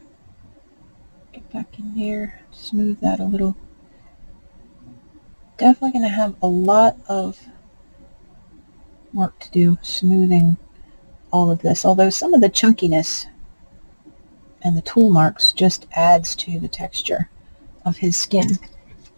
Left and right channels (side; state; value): both; inverted; correlation -1.00